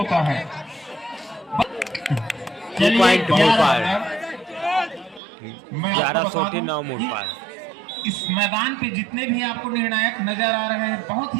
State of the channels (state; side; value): drops out; left; at 5.2 s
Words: है। 2 पॉइंट मुड़पार। मैं आपको बता दूं 11-9 मुड़पार। इस मैदान पे जितने भी आपको निर्णायक नजर आ रहे हैं बहुत